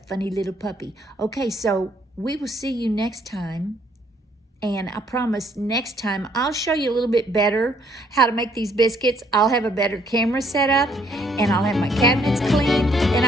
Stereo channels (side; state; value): both; normal; correlation 0.66